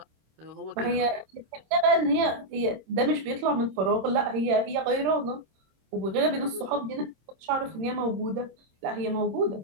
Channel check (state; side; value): late; left; 26 ms